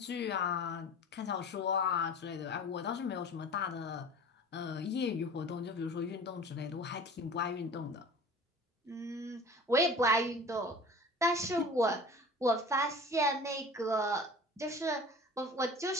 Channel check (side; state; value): both; normal; correlation 0.41